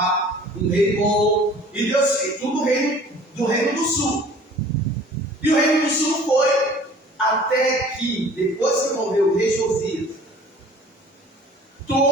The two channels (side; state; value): both; normal; correlation 0.49